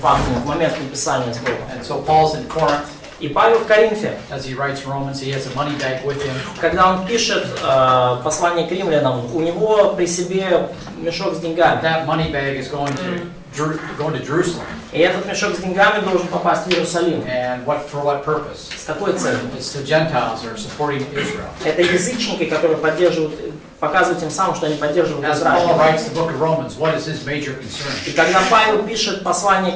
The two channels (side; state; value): both; identical; correlation 1.00